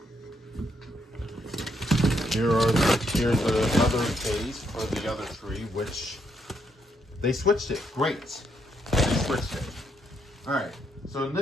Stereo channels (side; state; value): both; normal; correlation 0.76